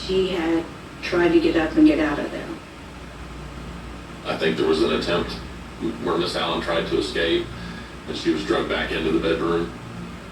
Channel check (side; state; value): both; identical; correlation 1.00